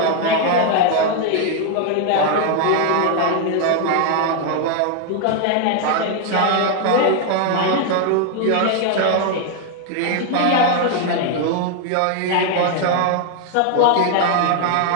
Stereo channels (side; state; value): both; different; correlation 0.00